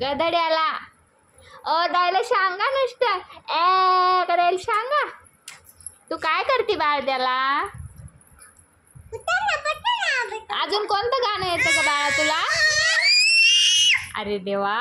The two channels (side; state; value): both; identical; correlation 1.00